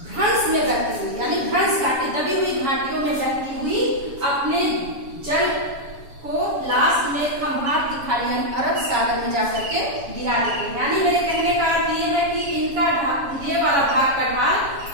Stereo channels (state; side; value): late; left; 7.2 ms